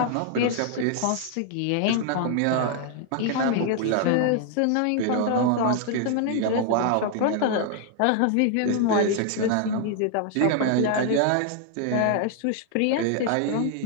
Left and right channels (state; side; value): different; both; correlation 0.00